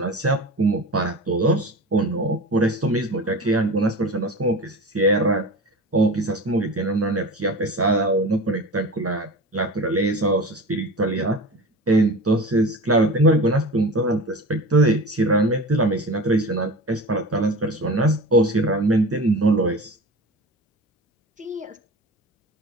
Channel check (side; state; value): both; normal; correlation 0.33